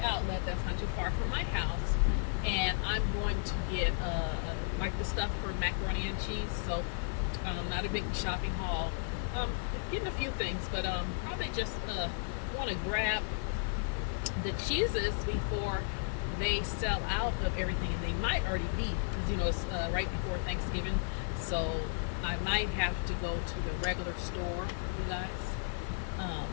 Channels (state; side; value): silent; right; 55 dB below the other